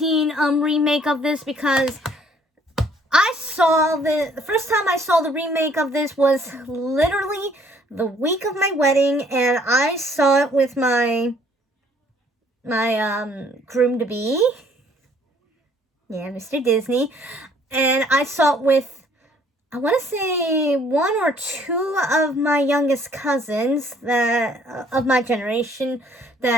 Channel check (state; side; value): normal; both; correlation 0.61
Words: remake of this because I saw the first time I saw the remake of this was literally the week of my wedding, and I saw it with my groom-to-be. Yeah, Mr. Disney. And I saw it with, I want to say, one or two of my youngest cousins that of my generation